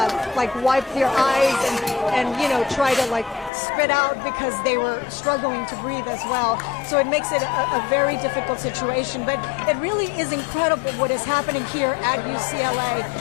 like wipe their eyes and you know, try to like spit out because they were struggling to breathe as well. So it makes it a very difficult situation. But it really is incredible what is happening here at UCLA.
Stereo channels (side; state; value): right; drops out; at 3.5 s